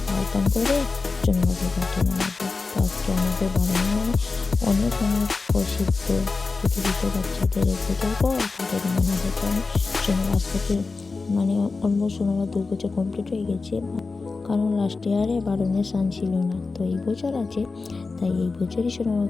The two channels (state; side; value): quieter; right; 4.1 dB